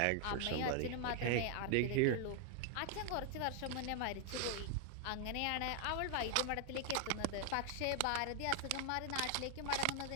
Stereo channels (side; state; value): both; different; correlation 0.00